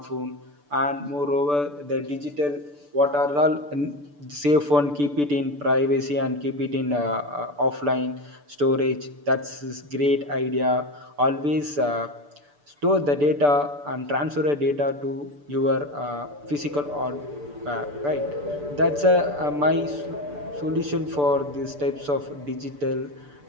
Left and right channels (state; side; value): late; left; 6.9 ms